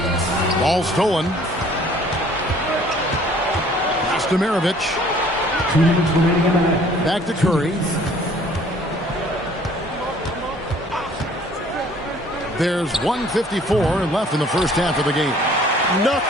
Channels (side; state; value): both; normal; correlation 0.55